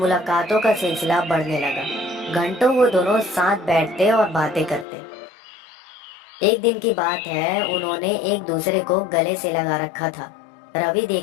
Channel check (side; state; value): right; drops out; at 4.9 s